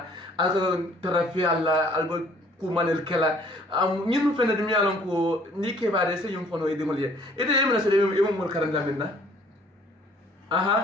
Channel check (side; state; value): both; normal; correlation 0.57